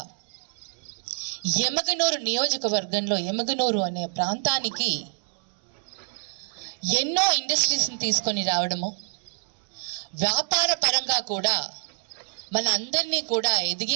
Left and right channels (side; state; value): left; silent; digital silence